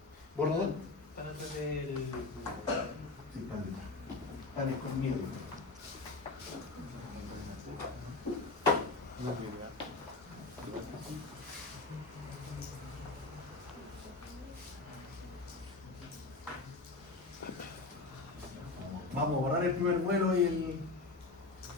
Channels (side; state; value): right; quieter; 3.6 dB